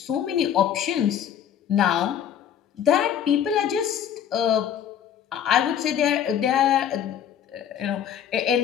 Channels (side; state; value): right; quieter; 9.3 dB